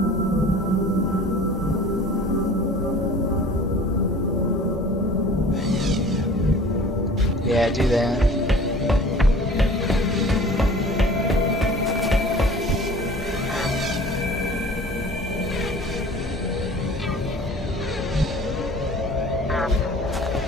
Yeah, do that.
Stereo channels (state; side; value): normal; both; correlation 0.45